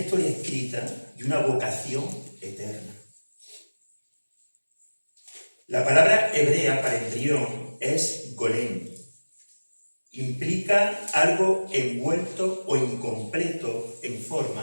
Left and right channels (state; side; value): inverted; both; correlation -1.00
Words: escrita y una vocación eterna. La palabra hebrea para embrión es golem. Implica algo envuelto o incompleto en